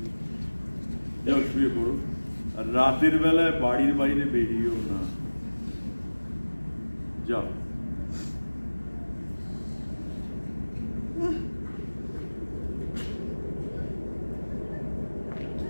যাও, শুয়ে পড়ো। আর রাতের বেলায় বাড়ির বাইরে বেরিয়েও না। যাও।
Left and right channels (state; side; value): inverted; both; correlation -1.00